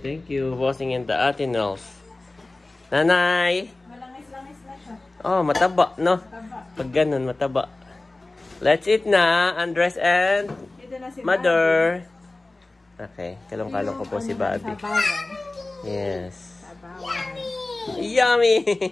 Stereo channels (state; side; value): quieter; right; 3.0 dB